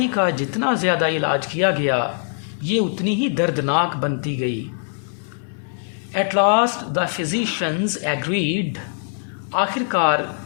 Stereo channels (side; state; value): right; silent; 64 dB below the other